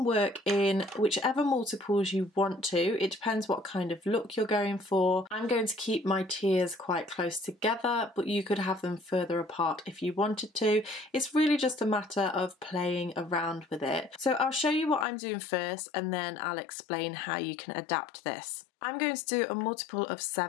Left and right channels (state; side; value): drops out; right; at 15.1 s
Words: work in whichever multiples you want to. It depends what kind of look you're going for. I'm going to keep my tiers quite close together, but you could have them further apart if you wanted to. It's really just a matter of playing around with it. So I'll show you what I'm doing first, and then I'll explain how you can adapt this. I'm going to do a multiple of